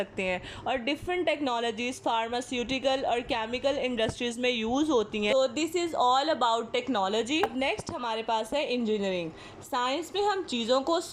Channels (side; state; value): both; identical; correlation 1.00